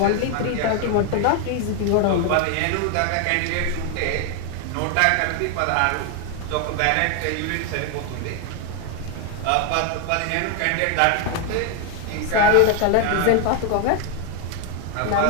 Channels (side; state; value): both; different; correlation 0.01